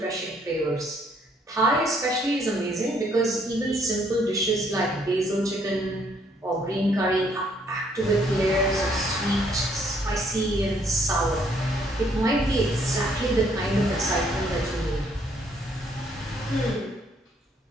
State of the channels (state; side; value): normal; both; correlation 0.67